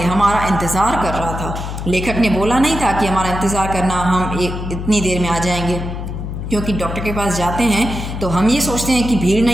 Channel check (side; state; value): left; noise; hum, 6 dB below the sound